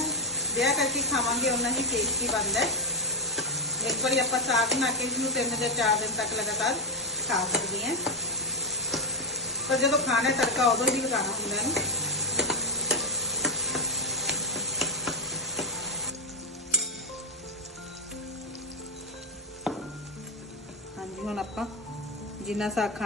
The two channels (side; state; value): both; normal; correlation 0.04